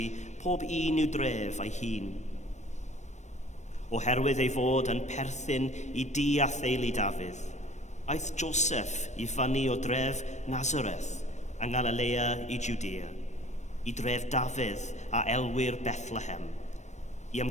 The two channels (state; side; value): late; right; 0.34 ms